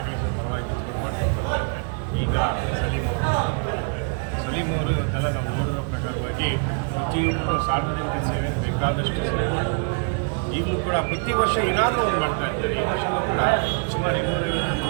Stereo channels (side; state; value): left; quieter; 39.1 dB